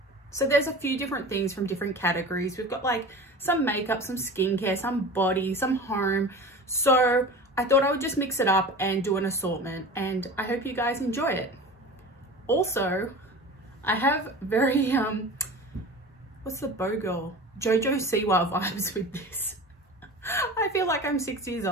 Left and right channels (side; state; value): both; normal; correlation 0.35